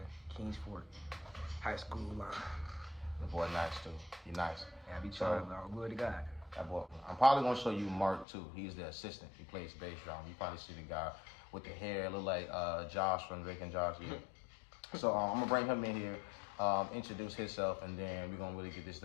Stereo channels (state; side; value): drops out; right; at 8.2 s